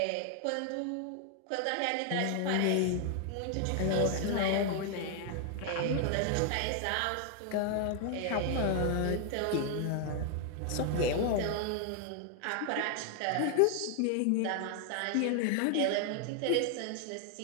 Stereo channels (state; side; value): different; both; correlation 0.00